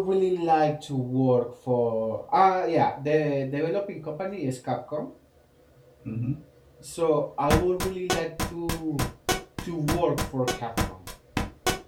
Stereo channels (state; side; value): identical; both; correlation 1.00